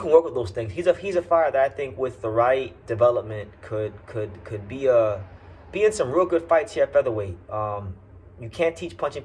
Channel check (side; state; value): both; identical; correlation 1.00